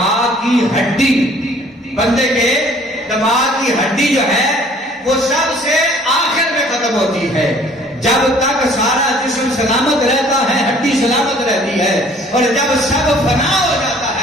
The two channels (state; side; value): normal; both; correlation 0.55